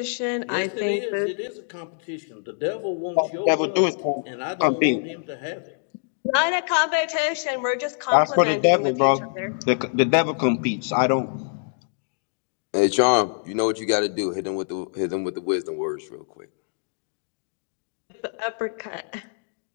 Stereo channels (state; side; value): silent; right; digital silence